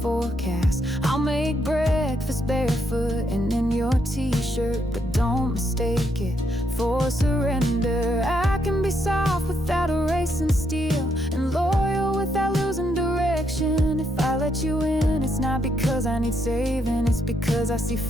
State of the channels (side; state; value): both; normal; correlation 0.77